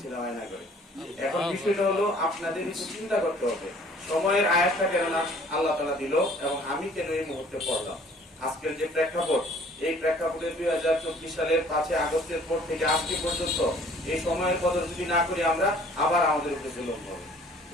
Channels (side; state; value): both; normal; correlation 0.54